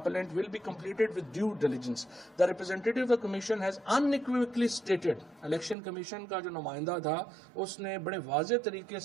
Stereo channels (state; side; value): drops out; left; at 5.8 s